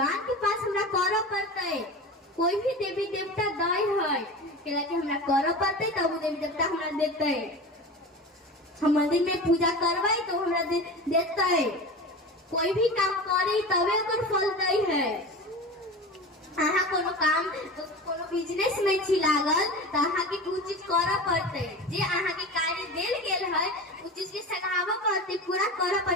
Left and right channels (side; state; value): both; normal; correlation 0.31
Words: के पास हमरा करऽ पड़ते। कोई भी देवी देवता दाई है कि हमरा करऽ पड़ते, तब वो देवी देवता हमरा देते। हम मंदिर में पूजा करबै तो हमरा देते, कोई भी काम करे तबे ओकर फल दै है। अहाँ कोनो काम कोनो बिजनेस में छी लागल तो अहाँ के कुछ चीज करऽ पड़ते, जे अहाँ के कार्य देल गेल है उस चीज के सगावऽ पड़ते, पूरा करऽ